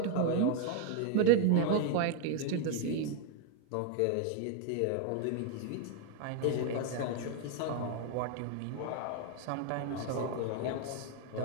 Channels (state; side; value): different; both; correlation 0.00